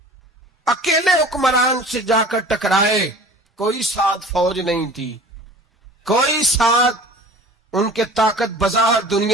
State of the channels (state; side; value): normal; both; correlation 0.43